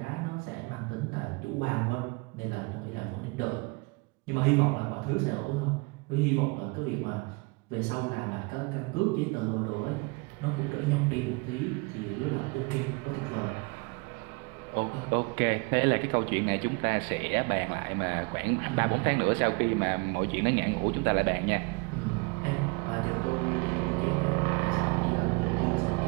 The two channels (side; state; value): left; quieter; 28.8 dB